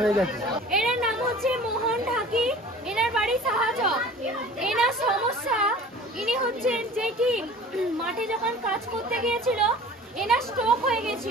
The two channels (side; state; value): both; normal; correlation 0.43